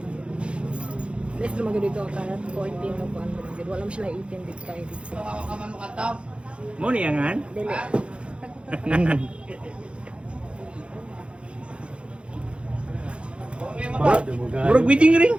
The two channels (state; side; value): late; left; 0.058 ms